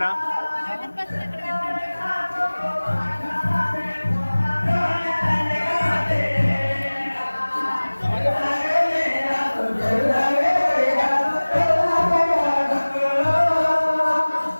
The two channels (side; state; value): both; inverted; correlation -1.00